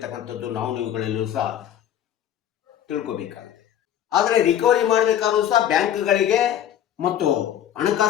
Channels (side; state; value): right; quieter; 10.5 dB